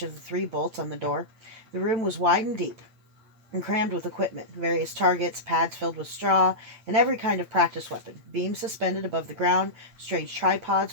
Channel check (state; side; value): late; left; 8.9 ms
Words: the 3 bolts on the door. The room was wide and deep, and crammed with equipment, various targets, pads filled with straw, and every kind of practice weapon, beams suspended above the ground, strange tripods